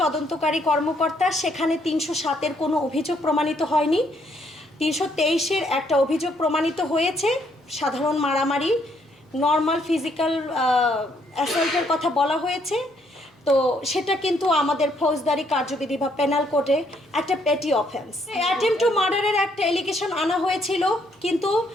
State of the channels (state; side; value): normal; both; correlation 0.70